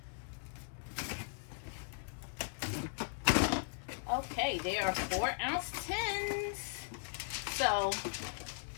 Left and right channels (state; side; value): silent; right; 52 dB below the other